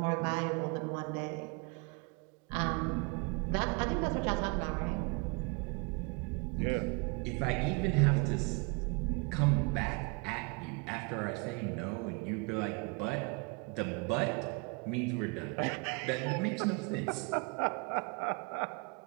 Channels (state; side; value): quieter; left; 31.4 dB